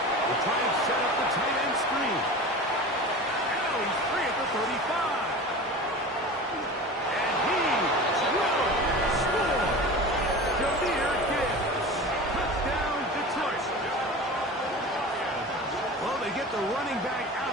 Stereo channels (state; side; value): normal; both; correlation 0.33